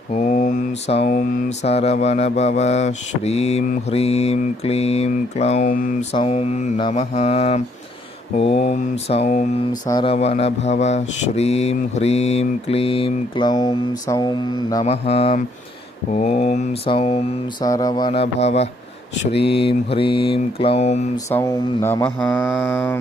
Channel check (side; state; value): both; normal; correlation 0.69